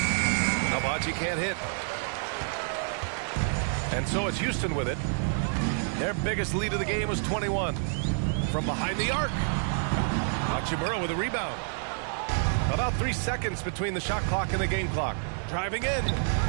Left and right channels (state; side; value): silent; left; digital silence